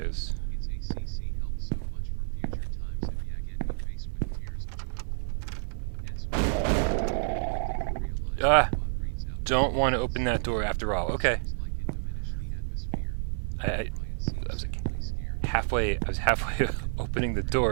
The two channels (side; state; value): left; silent; digital silence